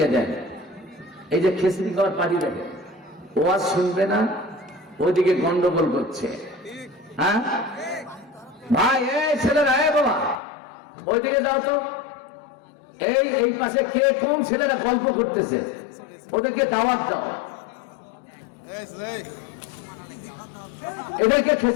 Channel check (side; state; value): right; drops out; at 10.4 s